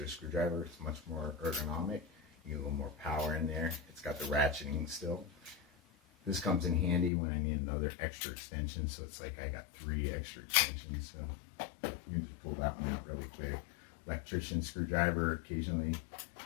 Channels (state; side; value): drops out; right; at 7.1 s